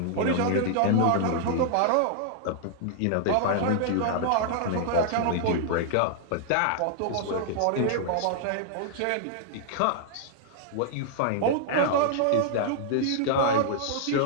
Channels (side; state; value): both; different; correlation -0.01